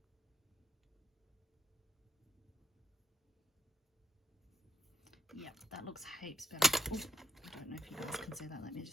Yep, that looks heaps better. Oh, I don't know if you guys can see that. Let me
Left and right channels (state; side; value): normal; both; correlation 0.76